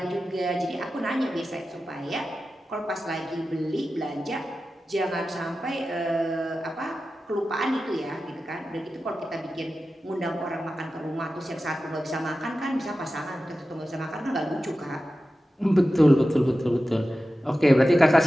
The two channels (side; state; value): both; normal; correlation 0.94